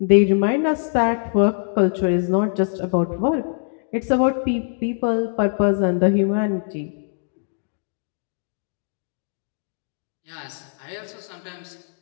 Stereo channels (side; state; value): right; silent; digital silence